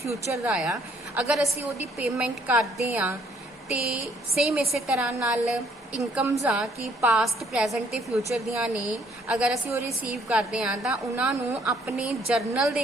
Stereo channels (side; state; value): both; normal; correlation 0.65